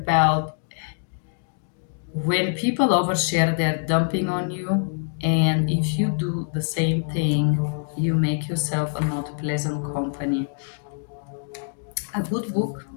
when people overshare, they're dumping on you. And if you do the same thing, you make yourself a not pleasant company. A good book,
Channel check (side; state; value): right; silent; digital silence